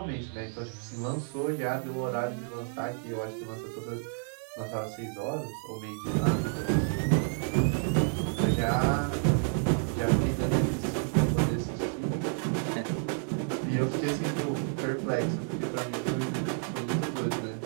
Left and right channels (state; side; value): silent; left; 56 dB below the other